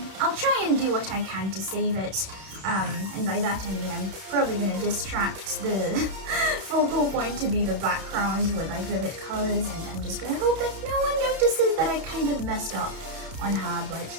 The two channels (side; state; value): left; late; 31 ms